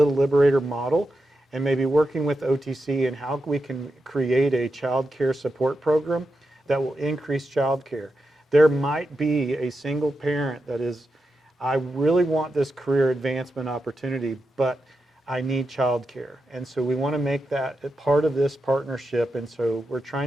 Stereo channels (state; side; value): normal; both; correlation 0.88